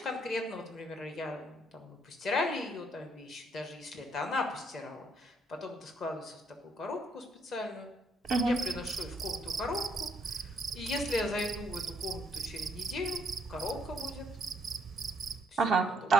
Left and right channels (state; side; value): normal; both; correlation 0.70